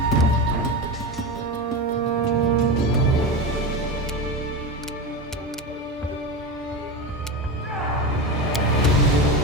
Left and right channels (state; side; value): normal; both; correlation 0.21